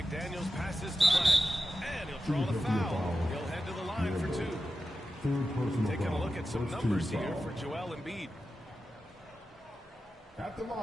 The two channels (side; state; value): both; normal; correlation 0.92